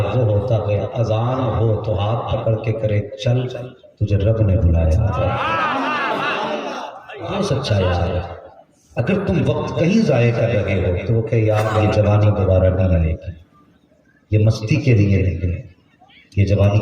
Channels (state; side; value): identical; both; correlation 1.00